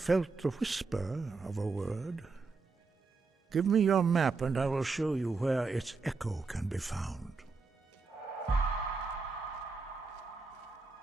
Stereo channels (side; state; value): left; quieter; 4.3 dB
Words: felt the whisper of a word. Give me your map and I will show you where its echo can be found.